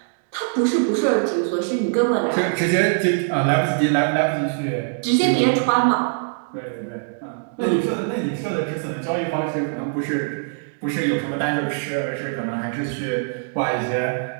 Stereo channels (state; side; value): silent; left; digital silence